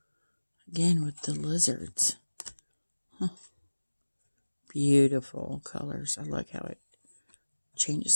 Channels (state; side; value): inverted; both; correlation -1.00